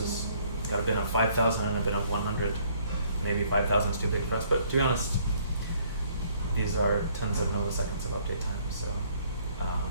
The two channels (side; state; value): both; inverted; correlation -0.62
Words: got a bin of 5,000 and a bin of 100, maybe 5,000 is too big for us. But to be honest, these are tens of milliseconds of update time, so